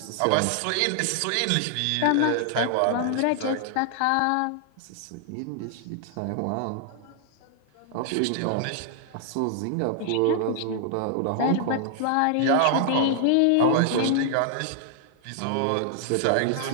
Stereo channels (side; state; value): both; different; correlation 0.00